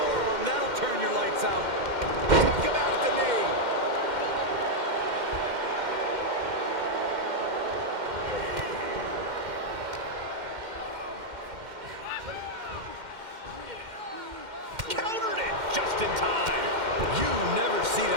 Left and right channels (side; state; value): left; late; 2.1 ms